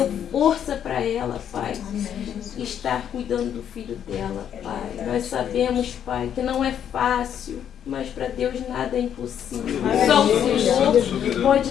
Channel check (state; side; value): quieter; right; 9.3 dB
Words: força para ela, Pai. Estar cuidando do filho dela, Pai. Nós sabemos, Pai, que não é fácil, mas para Deus nada é impossível. Só o Senhor